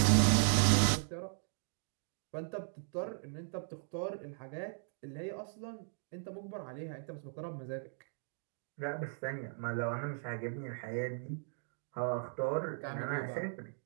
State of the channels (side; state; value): left; silent; digital silence